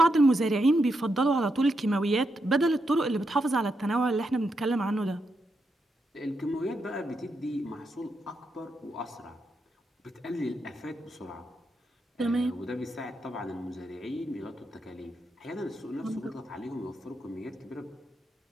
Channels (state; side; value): normal; both; correlation 0.83